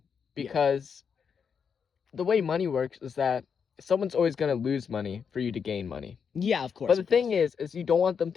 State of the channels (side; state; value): right; quieter; 6.6 dB